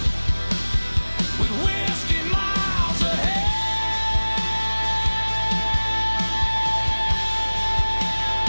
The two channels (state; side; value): inverted; both; correlation -1.00